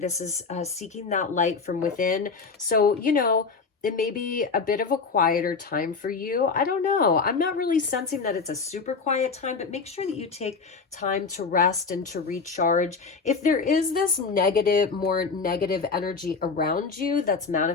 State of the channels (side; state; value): right; quieter; 4.8 dB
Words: is seeking that light from within. So, you know, it may be a bit of a quieter time for you. I don't know. I'm not really sensing that it's a super quiet time, but make sure that you take time to rest and to recharge. If there is this more negative energy around you that's